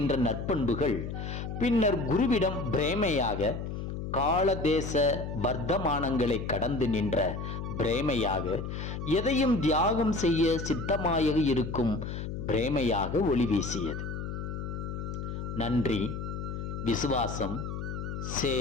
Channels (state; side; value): noise; left; hum, 5 dB below the sound